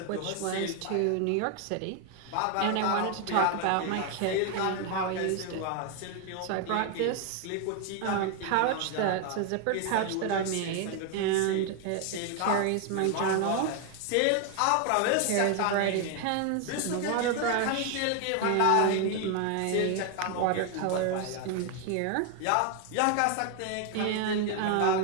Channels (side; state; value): both; different; correlation 0.01